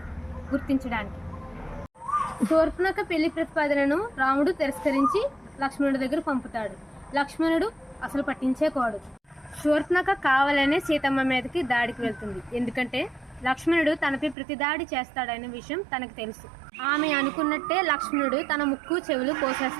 గుర్తించడానికి. శూర్పణఖ పెళ్లి ప్రతిపాదనను రాముడు తిరస్కరించి లక్ష్మణుడి దగ్గర పంపుతాడు. లక్ష్మణుడు అసలు పట్టించేకోడు. శూర్పణఖ కావాలనే సీతమ్మ మీదకి దాడికి వెళ్తుంది. ఎందుకంటే లక్ష్మణుడు తనపై ప్రతి దాడి చేస్తాడనే విషయం తనకు తెలుసు. ఆమె అనుకున్నట్టే లక్ష్మణుడు తన ముక్కు చెవులు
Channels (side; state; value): left; drops out; at 14.4 s